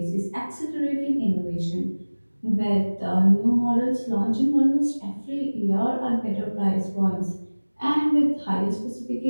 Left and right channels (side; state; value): both; inverted; correlation -1.00